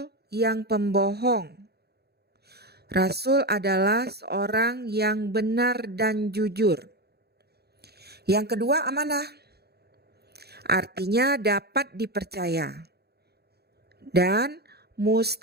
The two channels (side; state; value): left; late; 0.47 ms